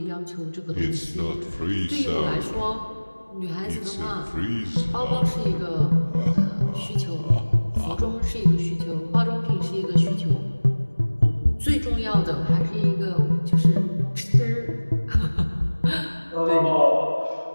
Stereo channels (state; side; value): inverted; both; correlation -1.00